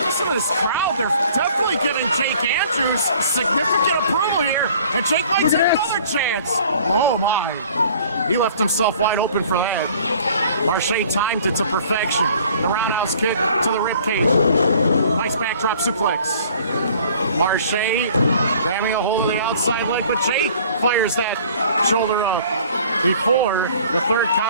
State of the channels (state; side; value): inverted; both; correlation -0.52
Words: Listen to this crowd. They're definitely giving Jake Andrews significant approval here. And Jake might take another chance. Oh, my. He left himself wide open for that. Marche timed it to perfection. The roundhouse kick to the ribcage. Nice backdrop suplex. Marche grabbing a hold of the outside leg, but Jake fires that shoulder up before the third